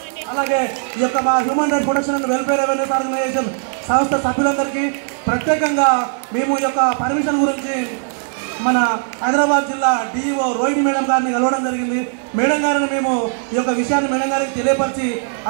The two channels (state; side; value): silent; left; 67 dB below the other